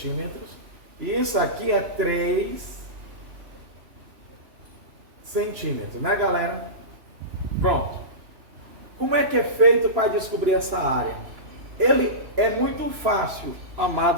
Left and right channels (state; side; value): late; left; 3.0 ms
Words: isso aqui é 3 centímetros, né, galera? Pronto. Como é que é feito para descobrir essa área? Ele é muito fácil,